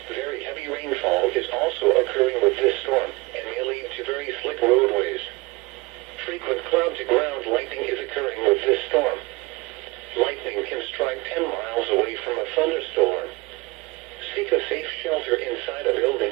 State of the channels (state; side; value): quieter; left; 23.5 dB